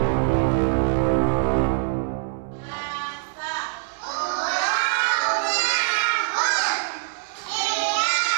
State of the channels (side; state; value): left; silent; 63 dB below the other